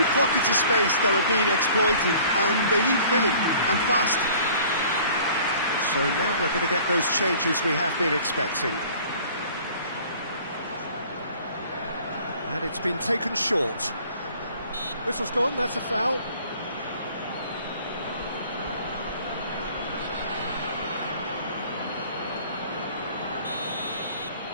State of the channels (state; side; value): inverted; both; correlation -0.51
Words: pockets of space that are being exploited and they need filling, and fast. So now we're going to get those changes we have been expecting. And it's been taken short. Whistle's gone, that's a foul.